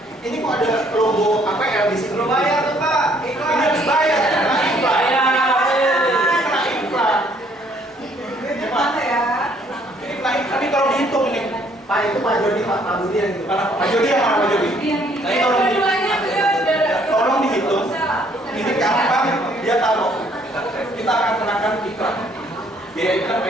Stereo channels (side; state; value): both; normal; correlation 0.64